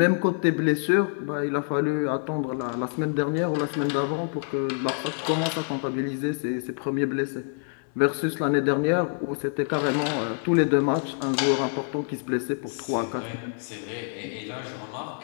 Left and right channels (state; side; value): silent; right; 59 dB below the other